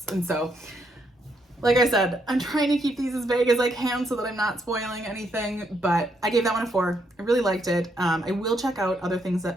And so, like I said, I'm trying to keep these as vague as I can so that I'm not spoiling anything, but I gave that one a 4. I really liked it. I will check out other things that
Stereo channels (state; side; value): normal; both; correlation 0.76